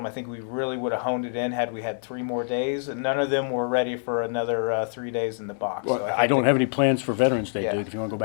I think we really would have honed it in had we had 3 more days, and none of them were ready for another 3 days in the box. Well, So I don't have any plans for Veterans Day, Yeah. Duke, if you want to go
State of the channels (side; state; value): right; silent; digital silence